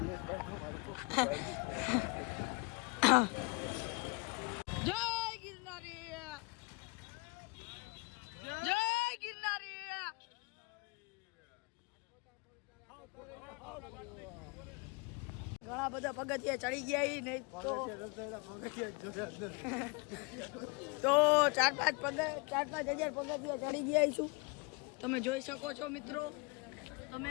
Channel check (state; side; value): quieter; right; 29.3 dB